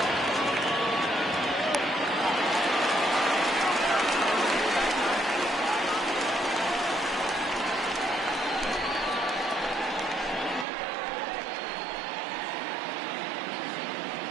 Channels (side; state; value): left; drops out; at 10.7 s